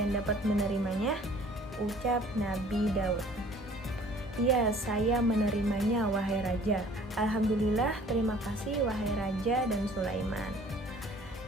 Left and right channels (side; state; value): both; normal; correlation 0.53